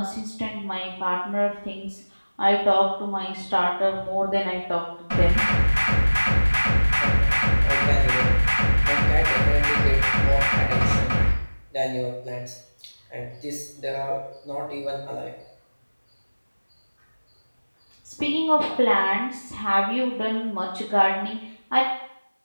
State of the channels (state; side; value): inverted; both; correlation -1.00